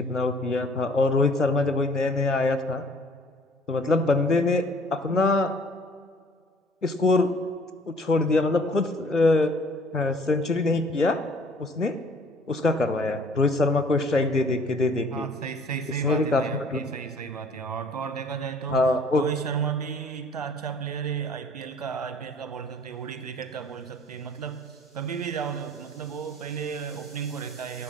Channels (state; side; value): normal; both; correlation 0.55